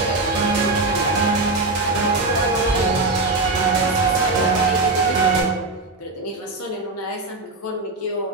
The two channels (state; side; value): quieter; left; 3.2 dB